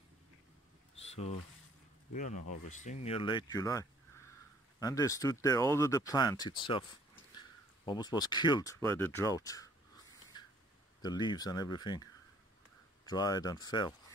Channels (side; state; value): both; normal; correlation 0.59